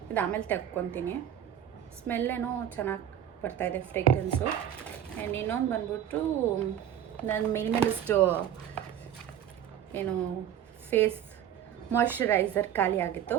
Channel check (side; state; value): left; quieter; 10.3 dB